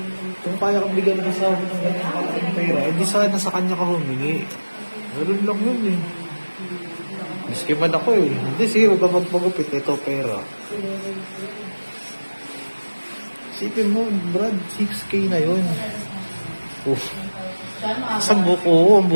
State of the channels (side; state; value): both; inverted; correlation -1.00